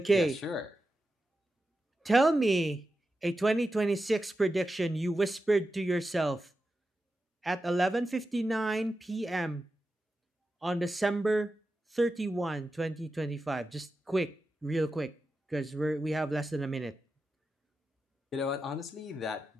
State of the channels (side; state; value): both; normal; correlation 0.91